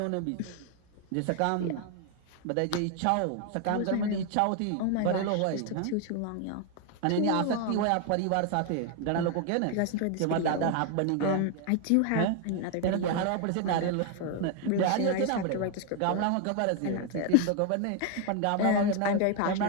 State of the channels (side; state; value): both; different; correlation 0.01